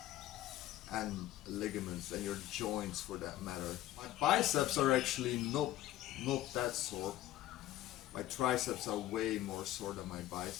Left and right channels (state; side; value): quieter; right; 14.3 dB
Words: and ligaments and your joints for that matter. My biceps are actually not that sore. My triceps are way more sore than my